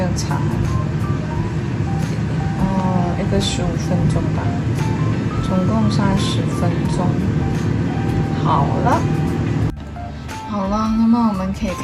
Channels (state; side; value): identical; both; correlation 1.00